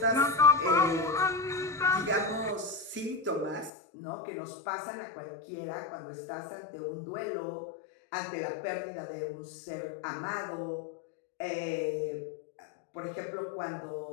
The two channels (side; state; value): right; drops out; at 3.7 s